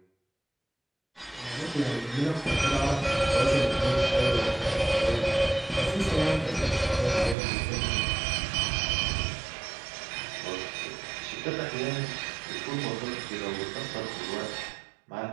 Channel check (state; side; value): drops out; left; at 7.4 s